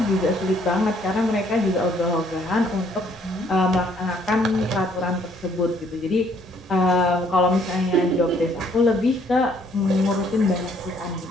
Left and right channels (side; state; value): both; normal; correlation 0.65